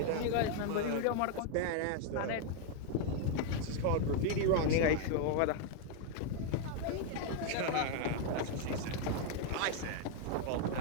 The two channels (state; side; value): different; both; correlation 0.00